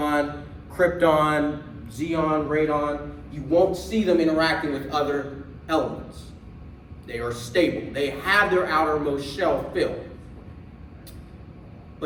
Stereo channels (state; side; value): identical; both; correlation 1.00